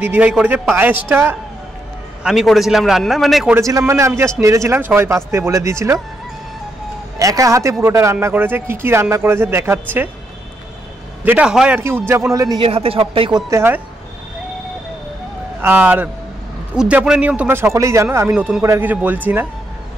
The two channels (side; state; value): both; normal; correlation 0.79